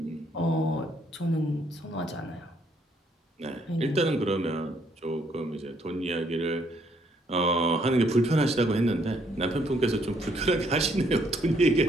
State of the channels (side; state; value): both; normal; correlation 0.69